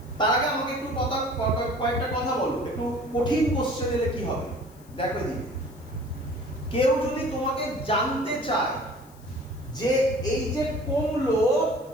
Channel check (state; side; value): noise; left; hiss, 27 dB below the sound